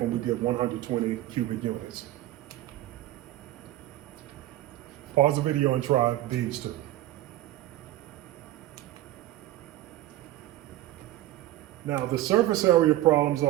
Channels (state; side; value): quieter; left; 15.1 dB